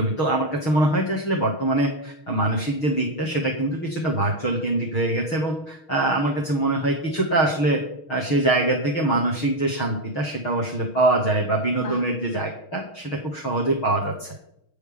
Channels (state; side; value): late; right; 6.4 ms